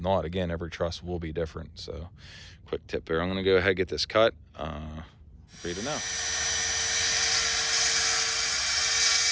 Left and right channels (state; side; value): identical; both; correlation 1.00